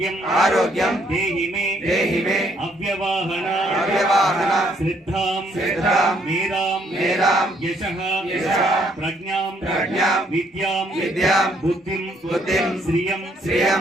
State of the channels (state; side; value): normal; both; correlation 0.68